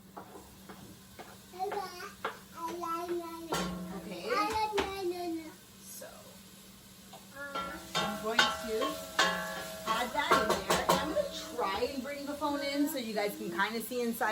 Okay. So I'm going to add that in there, and I'm going to try and bring the phone in so you guys can kind of see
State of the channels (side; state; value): both; identical; correlation 1.00